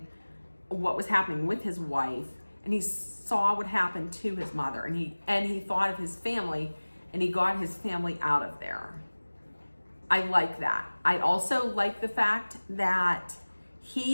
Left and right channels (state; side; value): inverted; both; correlation -1.00